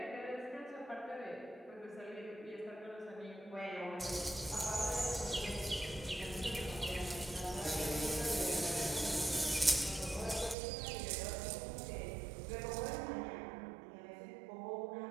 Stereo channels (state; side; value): drops out; left; at 10.6 s